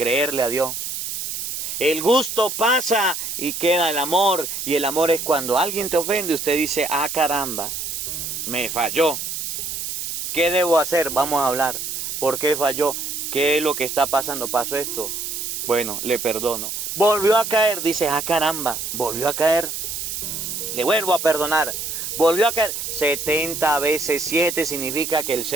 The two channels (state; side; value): noise; right; hiss, 5 dB below the sound